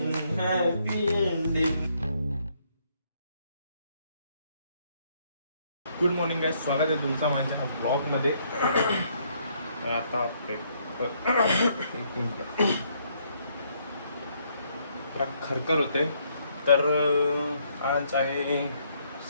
happy ending. Good morning guys, स्वागत आहे तुमचं माझ्या ब्लॉगमध्ये. आता एक मिनिट जरा खरखर होते. तर आज आहे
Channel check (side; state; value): both; inverted; correlation -0.70